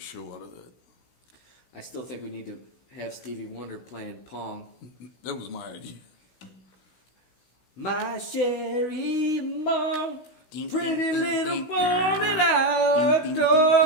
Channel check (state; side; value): late; right; 16 ms